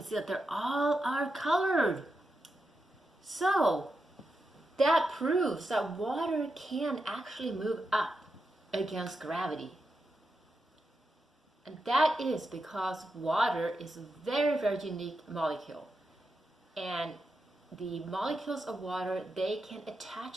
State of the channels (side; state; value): both; normal; correlation 0.87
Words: see that they're all are colored. So that proves that water can actually move up against gravity. And that is because water is a very, very unique molecule. And the molecules of water, they can